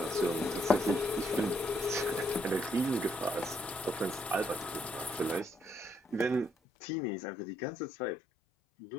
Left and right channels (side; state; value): right; drops out; at 6.5 s